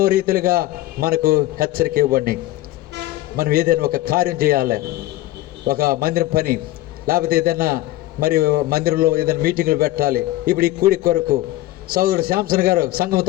రీతిలుగా మనకు హెచ్చరిక ఇవ్వండి. మనం ఏదైనా ఒక కార్యం చేయాలి, ఒక మందిరం పని, లేకపోతే ఏదైనా మరి మందిరంలో ఏదైనా మీటింగులు పెట్టాలి. ఇప్పుడు ఈ కూడి కొరకు సోదరుడు శాంసన్ గారు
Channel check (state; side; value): quieter; right; 16.6 dB